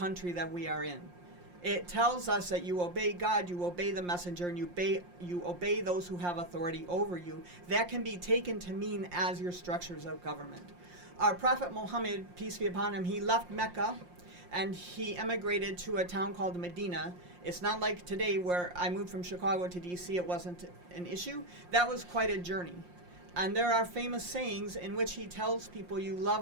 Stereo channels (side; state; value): left; late; 5.7 ms